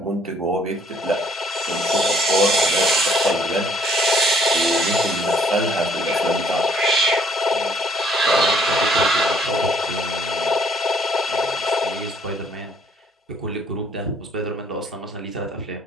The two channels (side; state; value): both; normal; correlation 0.63